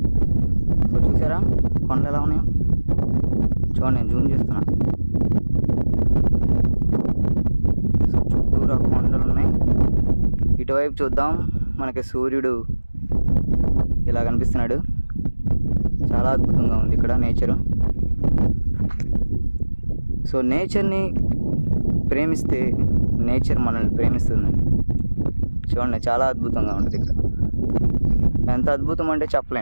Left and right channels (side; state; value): both; inverted; correlation -1.00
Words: సో చూసారా కొండలు ఎలా ఉన్నాయో? చూడండి, నేను జూమ్ చేస్తున్నా. సో చుట్టూరు కొండలు ఉన్నాయి. ఇటువైపు చూద్దాం, మనకి సూర్యుడు ఇలా కనిపిస్తున్నాడు. చాలా అద్భుతంగా ఉంది ఇక్కడ నేచరు. సో నేచర్ని ప్రేమిస్తే నేచర్ మనల్ని ప్రేమిస్తుందండి. చూడండి, చాలా అద్భుతంగా ఉంటుంది ఇక్కడ. ఎంత అద్భుతం అంటే